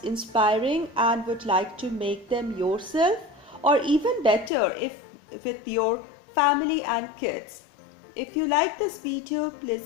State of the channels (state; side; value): drops out; right; at 4.5 s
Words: inspiring and would like to make them yourself, or even better if with your family and kids. If you like this video,